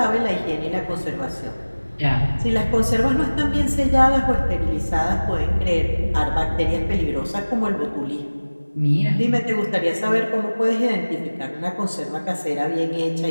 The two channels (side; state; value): both; inverted; correlation -1.00